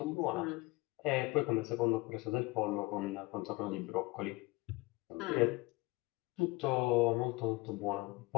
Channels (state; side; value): quieter; right; 22.4 dB